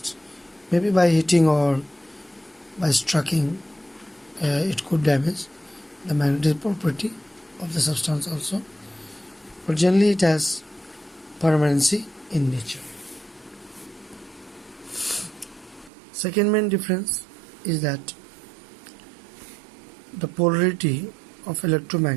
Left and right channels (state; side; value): drops out; left; at 15.9 s